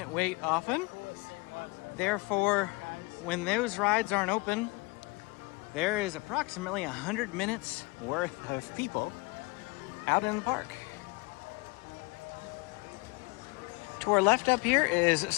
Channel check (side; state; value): right; quieter; 25.9 dB